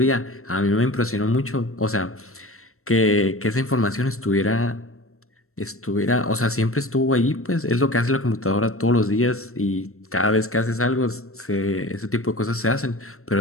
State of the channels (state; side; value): late; right; 0.63 ms